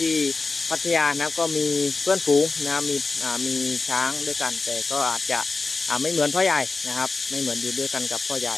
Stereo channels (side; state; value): right; quieter; 3.8 dB